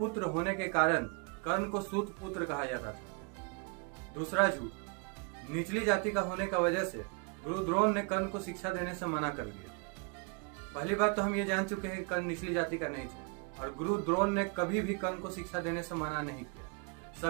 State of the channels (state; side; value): quieter; left; 32.5 dB